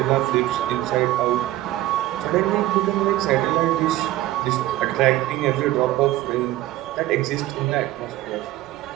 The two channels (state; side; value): quieter; left; 15.7 dB